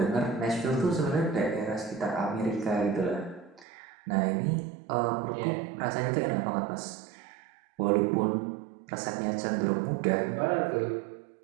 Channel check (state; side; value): drops out; left; at 3.7 s